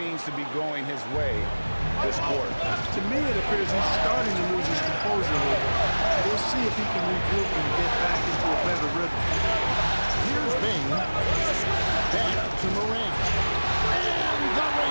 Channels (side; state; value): both; inverted; correlation -1.00